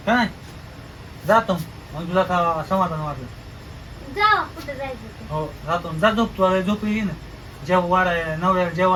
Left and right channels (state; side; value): identical; both; correlation 1.00